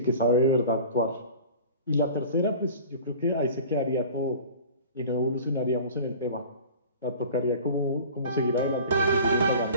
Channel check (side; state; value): both; inverted; correlation -0.41